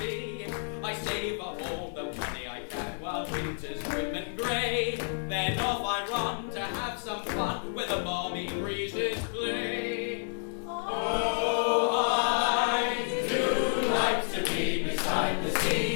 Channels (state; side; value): silent; right; 58 dB below the other